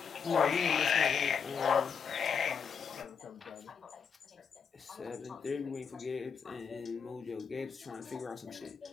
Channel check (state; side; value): quieter; right; 6.5 dB